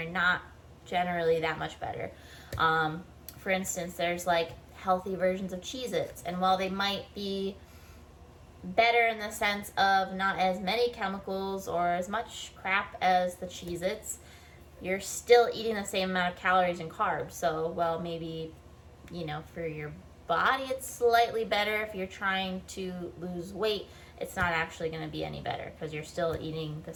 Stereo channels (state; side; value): identical; both; correlation 1.00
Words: not generally that much better. For instance, there's like healthy versions of Cheez-Its, and while they might be better in the sense of not as many chemicals or as much crap as the Cheez-Its, you're still eating the same amount of calories and carbs. So, well, maybe, for your body it's slightly better. If you're trying to lose weight, it's not actually going to be any better because you're still eating the